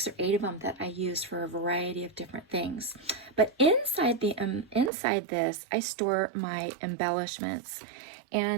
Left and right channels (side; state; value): left; drops out; at 4.9 s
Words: or 8 of them that I use for a variety of different things. But inside this, I store my embellishments.